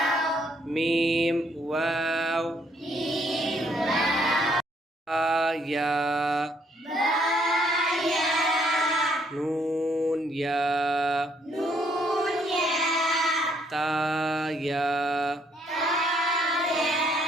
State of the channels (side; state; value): both; normal; correlation 0.69